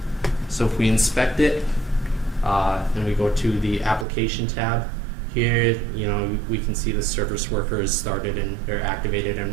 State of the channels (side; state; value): left; drops out; at 4.0 s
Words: So if we inspect it, and we go to the application tab, here, we can see the service worker is started and they're activated